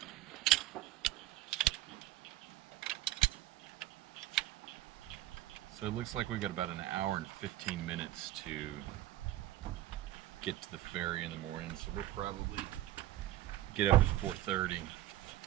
So it looks like we've got about an hour and 15 minutes to get to the ferry in the morning. So we'll probably get up at 4:30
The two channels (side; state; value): left; quieter; 14.9 dB